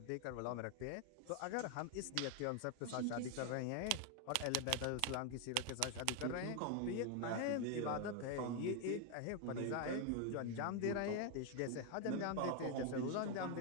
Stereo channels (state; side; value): different; both; correlation 0.01